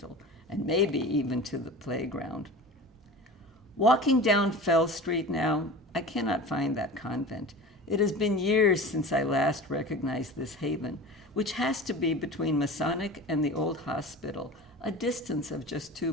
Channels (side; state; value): both; normal; correlation 0.35